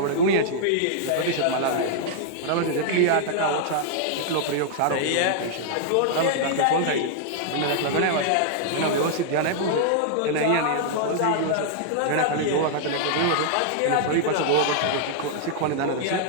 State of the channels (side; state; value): both; different; correlation -0.01